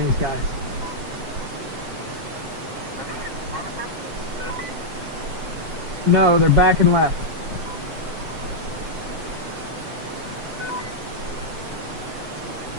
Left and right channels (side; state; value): left; late; 7.3 ms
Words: guys. No, they're back and left.